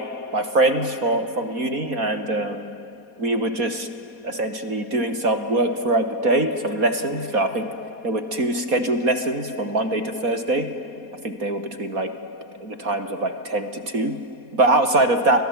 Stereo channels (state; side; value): late; left; 4.2 ms